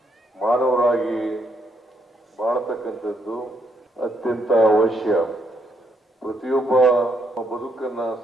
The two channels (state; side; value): normal; both; correlation 0.75